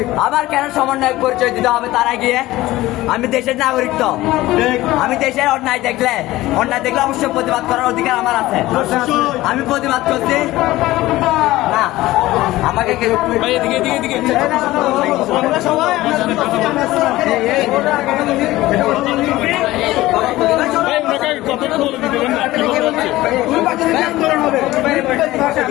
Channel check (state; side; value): quieter; right; 17.3 dB